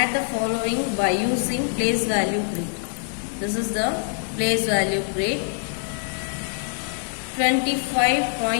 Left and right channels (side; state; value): right; silent; 62 dB below the other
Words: the following by using place value grid. This is the place value grid.